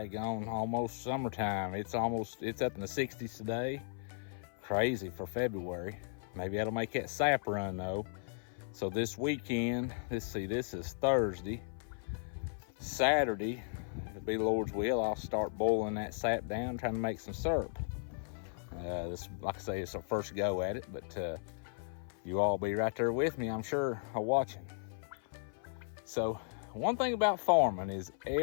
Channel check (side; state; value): right; silent; 54 dB below the other